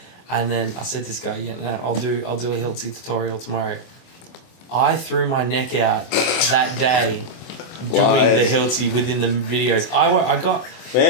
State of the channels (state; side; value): late; right; 24 ms